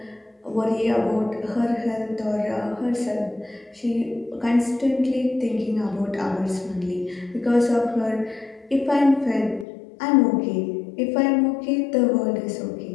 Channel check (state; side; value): drops out; right; at 9.7 s